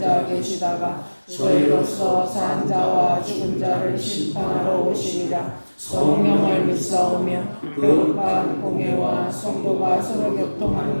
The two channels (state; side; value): inverted; both; correlation -1.00